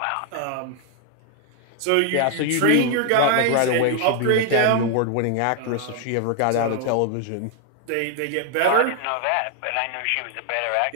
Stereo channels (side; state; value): both; different; correlation 0.00